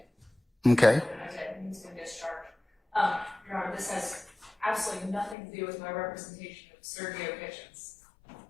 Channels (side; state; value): right; drops out; at 5.4 s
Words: Okay. I did. He's been discharged. Your Honor, this has absolutely nothing to do with my representation of Sergio Kitchens.